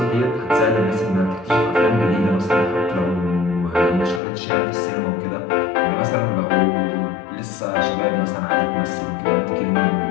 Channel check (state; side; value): drops out; right; at 4.2 s